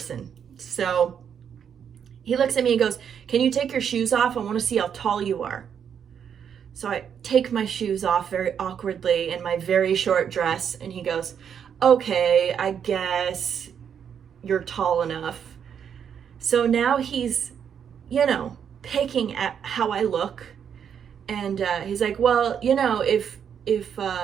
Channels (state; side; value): quieter; left; 8.0 dB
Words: So he looks at me and goes, can you take your shoes off? I want to see how tall you are. So I take my shoes off very awkwardly in my very short dress, and he goes, okay, I guess you're tall enough. So now he's, picking at how I look, and he's like, well, if